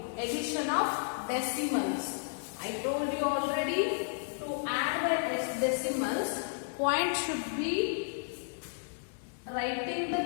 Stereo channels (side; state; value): right; silent; digital silence